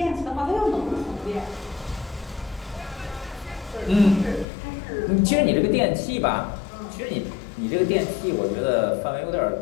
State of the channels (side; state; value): right; drops out; at 4.5 s